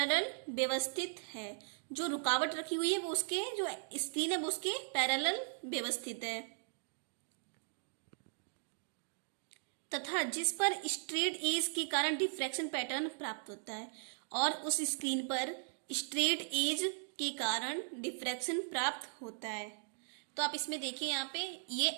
व्यवस्थित है। जो रुकावट रखी हुई है वो उसके, जो स्क्रीन है वो उसके पैरेलल व्यवस्थित है, तथा जिस पर स्ट्रेट एज के कारण डिफ्रैक्शन पैटर्न प्राप्त होता है, और उस स्क्रीन पर स्ट्रेट एज के कारण डिफ्रैक्शन प्राप्त होता है। तो आप इसमें देखिए, यहाँ पे ये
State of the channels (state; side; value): silent; left; digital silence